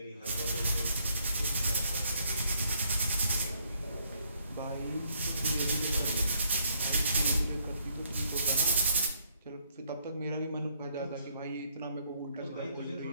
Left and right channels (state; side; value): inverted; both; correlation -0.67